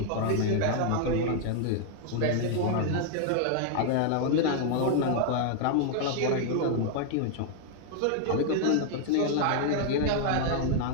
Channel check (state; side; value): different; both; correlation 0.00